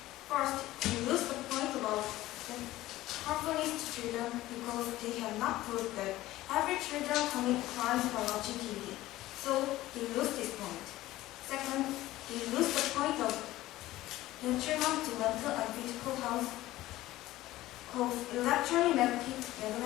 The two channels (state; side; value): quieter; right; 16.4 dB